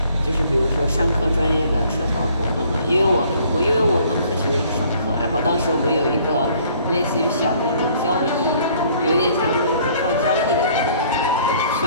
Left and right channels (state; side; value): inverted; both; correlation -0.59